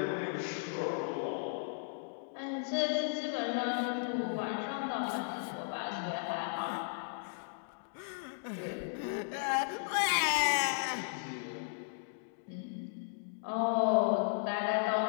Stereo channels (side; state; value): right; silent; digital silence